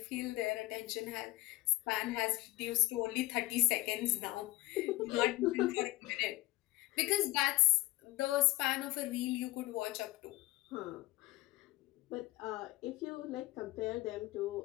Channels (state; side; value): quieter; right; 19.6 dB